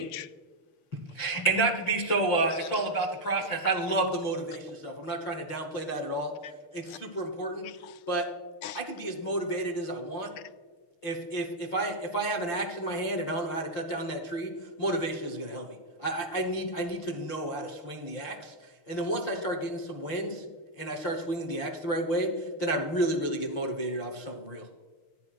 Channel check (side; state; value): right; late; 6.4 ms